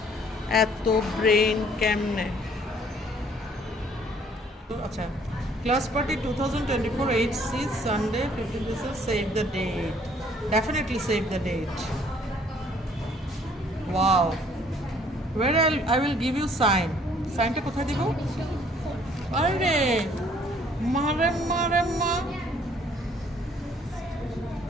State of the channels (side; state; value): both; normal; correlation 0.60